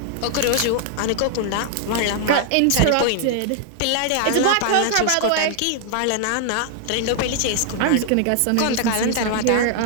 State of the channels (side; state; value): both; different; correlation -0.01